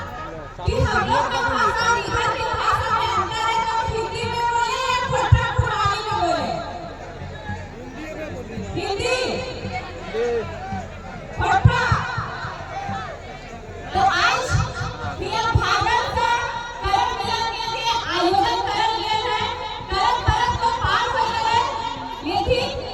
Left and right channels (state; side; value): identical; both; correlation 1.00